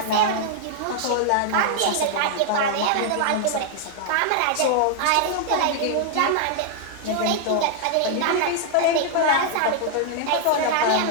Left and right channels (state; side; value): different; both; correlation -0.01